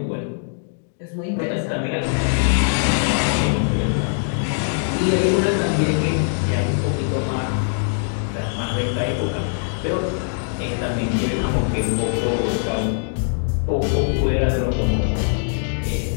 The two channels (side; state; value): right; silent; digital silence